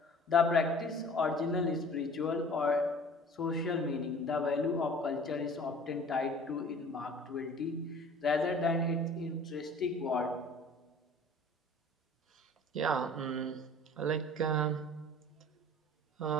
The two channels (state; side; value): normal; both; correlation 0.47